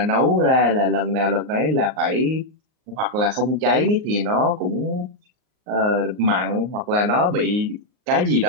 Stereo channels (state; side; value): late; left; 38 ms